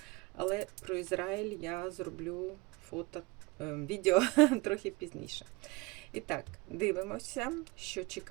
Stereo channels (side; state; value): left; quieter; 25.0 dB